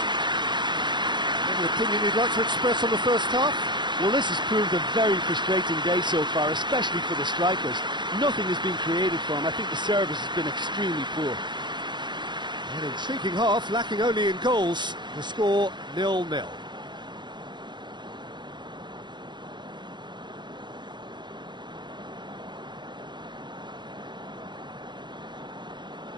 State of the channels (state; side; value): late; left; 0.22 ms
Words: Any opinion you'd like to express on the first half? Well, this has proved a very frustrating day so far, especially for the strikers. Nothing has been created for them. I think the service has been extremely poor. An intriguing half, lacking only in goals. The score 0-0.